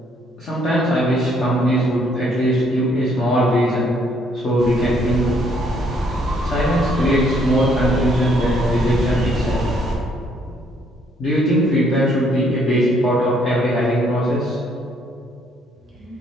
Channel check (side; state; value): both; normal; correlation 0.67